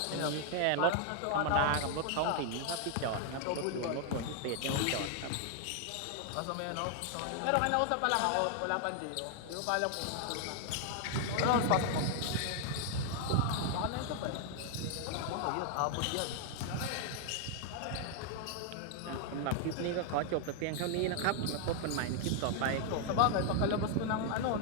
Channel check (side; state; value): both; different; correlation 0.00